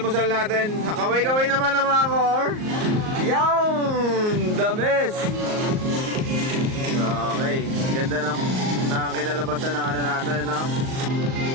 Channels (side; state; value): left; late; 38 ms